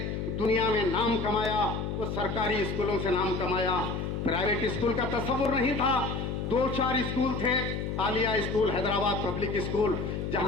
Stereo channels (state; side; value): noise; left; hum, 3 dB below the sound